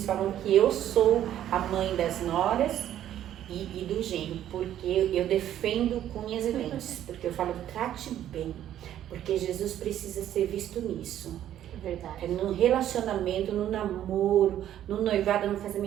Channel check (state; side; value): quieter; left; 11.5 dB